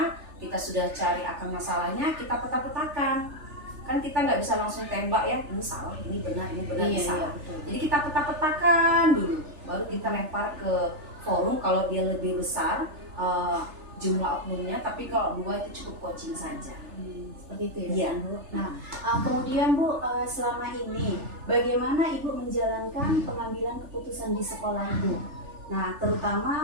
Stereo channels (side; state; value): left; late; 3.4 ms